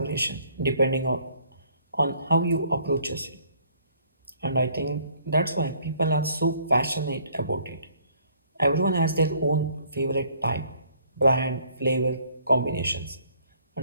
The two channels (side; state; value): both; inverted; correlation -0.61